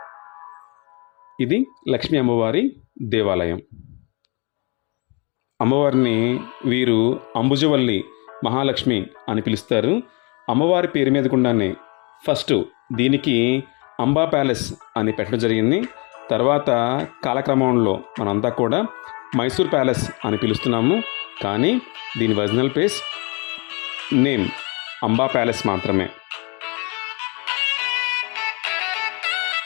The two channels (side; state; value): right; quieter; 31.1 dB